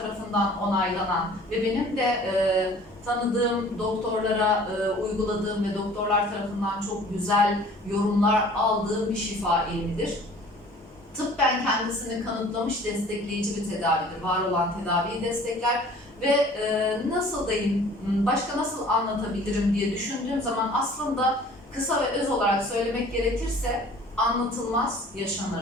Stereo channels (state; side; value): normal; both; correlation 0.49